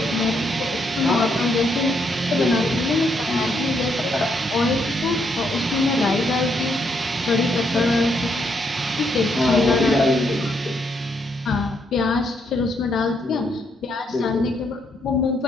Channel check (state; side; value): normal; both; correlation 0.75